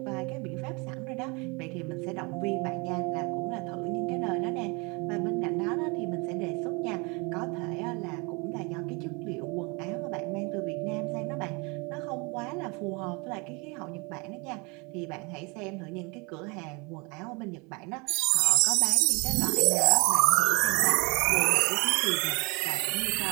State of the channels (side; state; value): left; quieter; 29.1 dB